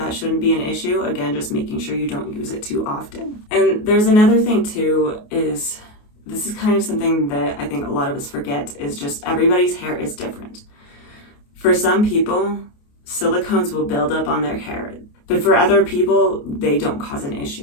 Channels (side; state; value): right; late; 28 ms